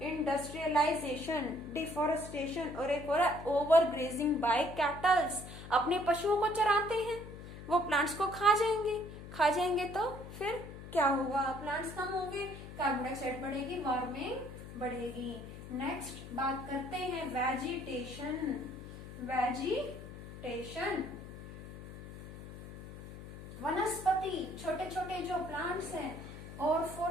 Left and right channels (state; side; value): noise; left; hum, 13 dB below the sound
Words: डिफोरेस्टेशन, और एक और ओवर ग्रेजिंग बाय कैटल्स। अपने पशुओं को चराते हैं, वो प्लांट्स को खा जाएंगे तो फिर क्या होगा, प्लांट्स कम होंगे, कार्बन डाइऑक्साइड बढ़ेगी, वार्मिंग बढ़ेगी। नेक्स्ट बात करते हैं वेजिटेशन। वनस्पति, छोटे छोटे जो प्लांट्स हैं, और